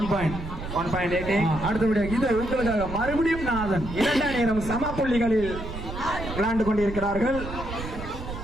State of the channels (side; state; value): right; noise; rumble, 9 dB below the sound